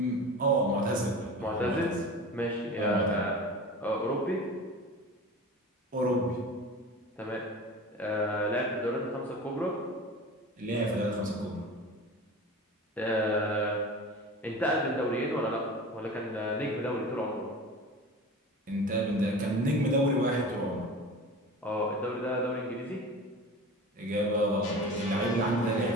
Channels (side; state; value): both; normal; correlation 0.34